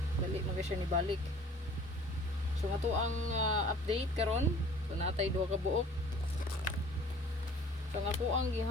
Balik man siya ni balik. So ato ang update karon. So natay duha ka buok. So ako ang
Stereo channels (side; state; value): both; normal; correlation 0.49